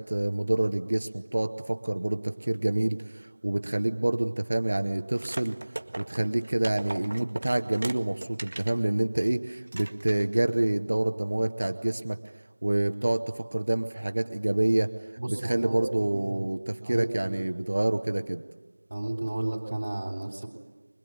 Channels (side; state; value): both; inverted; correlation -1.00